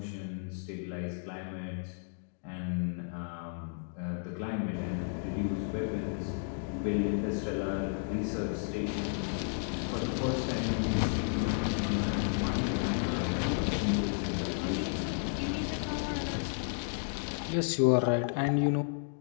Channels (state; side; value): silent; right; digital silence